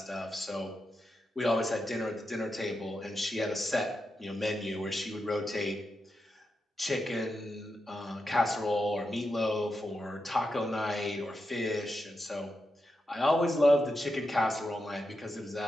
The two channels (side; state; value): both; normal; correlation 0.87